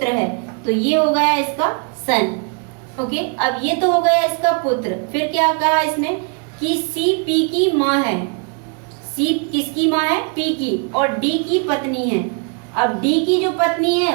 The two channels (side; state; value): left; quieter; 39.3 dB